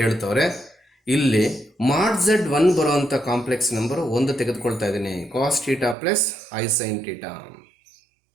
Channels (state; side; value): drops out; left; at 6.0 s